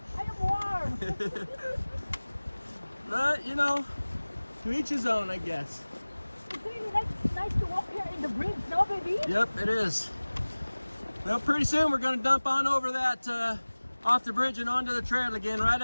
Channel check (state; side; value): inverted; both; correlation -1.00